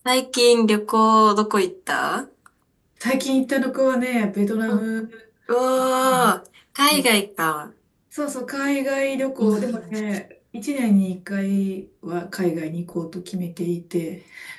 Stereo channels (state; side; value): identical; both; correlation 1.00